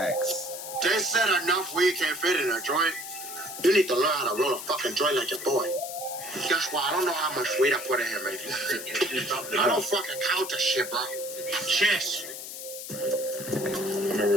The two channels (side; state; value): left; noise; hiss, 9 dB below the sound